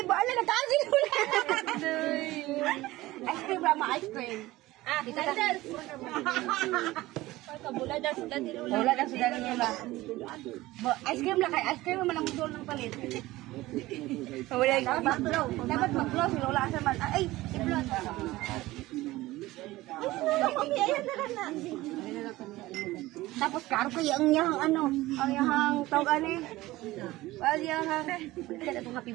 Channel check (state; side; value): quieter; left; 18.2 dB